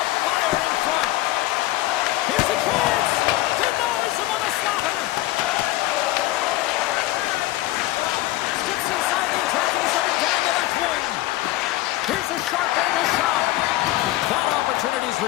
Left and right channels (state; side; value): quieter; right; 17.1 dB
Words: fire in front. Here's a chance. Denies him with a slaughter. Steps inside the attacking zone down the left wing. Here's a sharp angle shot. That opportunity's